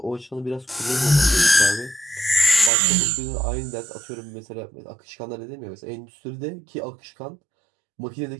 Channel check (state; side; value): drops out; left; at 2.7 s